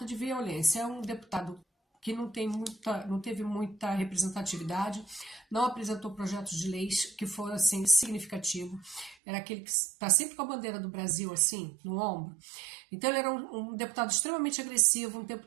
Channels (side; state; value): left; drops out; at 9.2 s